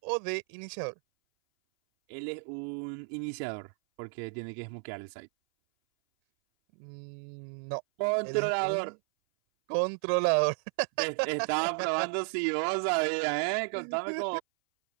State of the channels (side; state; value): left; silent; 56 dB below the other